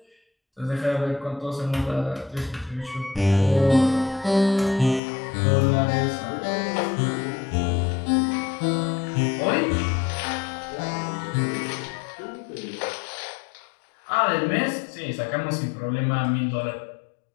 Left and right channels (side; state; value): right; drops out; at 5.0 s